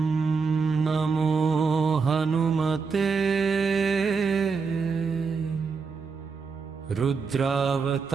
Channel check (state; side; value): quieter; left; 5.1 dB